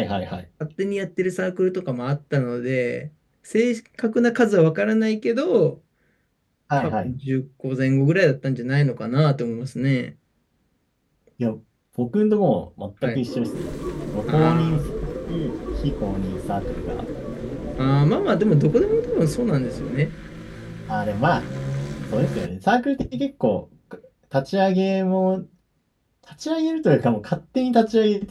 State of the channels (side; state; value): both; identical; correlation 1.00